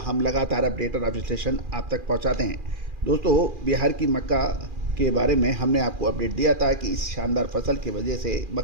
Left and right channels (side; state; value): left; late; 2.4 ms